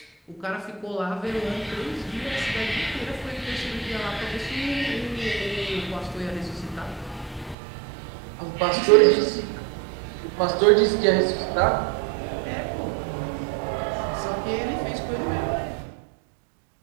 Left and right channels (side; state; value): left; drops out; at 7.6 s